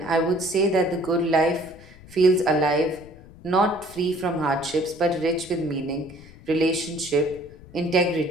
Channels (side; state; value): left; noise; rumble, 21 dB below the sound